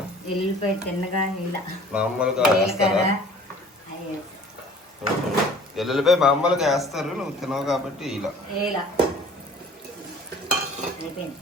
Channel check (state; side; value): normal; both; correlation 0.49